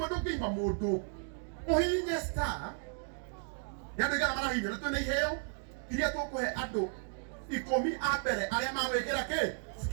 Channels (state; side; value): silent; left; 55 dB below the other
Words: ndũngĩima mũndũ. Ũhihinye star. Nĩ andũ aigana marahihinya na twĩna iheo iria tũkũhe andũ 10 a mbere arĩa magwĩkĩra kĩ?